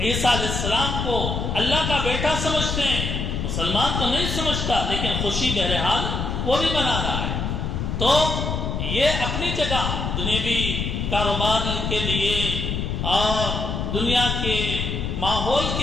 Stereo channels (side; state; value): left; noise; rumble, 2 dB below the sound